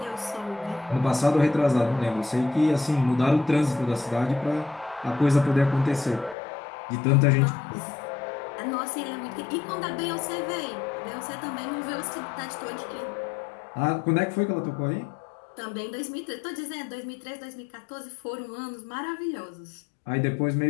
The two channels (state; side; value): drops out; right; at 6.4 s